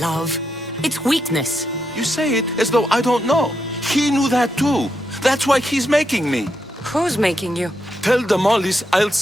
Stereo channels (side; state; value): both; normal; correlation 0.82